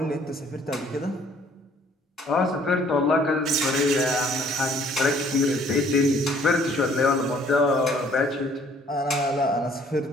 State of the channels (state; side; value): normal; both; correlation 0.60